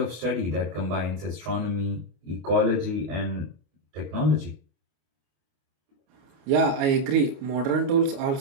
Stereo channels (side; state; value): left; late; 29 ms